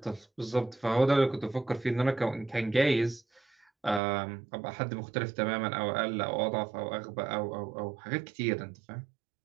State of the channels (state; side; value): drops out; left; at 4.0 s